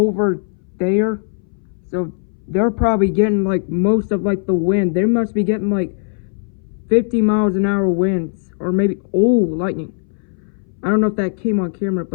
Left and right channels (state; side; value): silent; right; 63 dB below the other